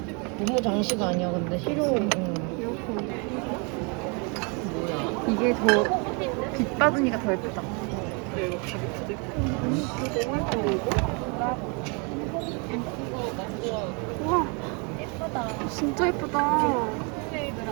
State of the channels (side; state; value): left; quieter; 33.2 dB